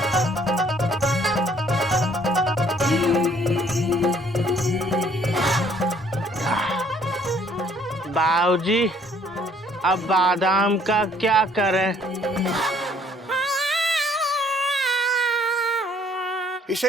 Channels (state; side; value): normal; both; correlation 0.61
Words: बाबूजी अब बादाम का क्या करें? इसे